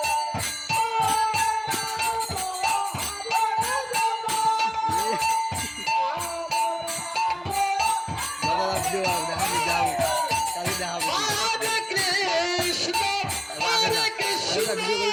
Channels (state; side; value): identical; both; correlation 1.00